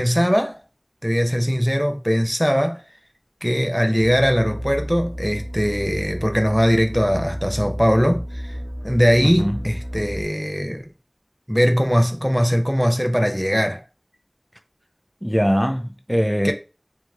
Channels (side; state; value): both; identical; correlation 1.00